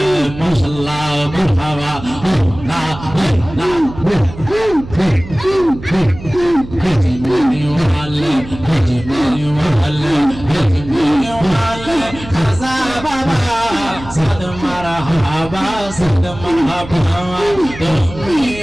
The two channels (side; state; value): right; noise; hum, 14 dB below the sound